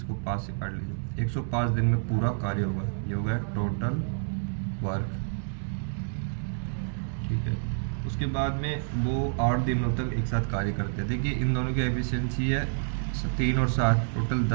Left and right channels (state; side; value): silent; left; digital silence